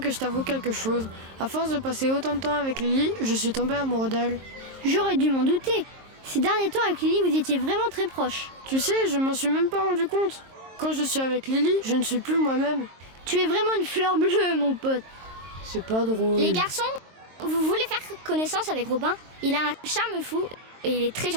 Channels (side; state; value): left; late; 23 ms